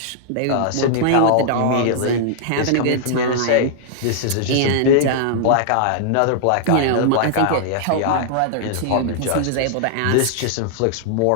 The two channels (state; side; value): different; both; correlation -0.01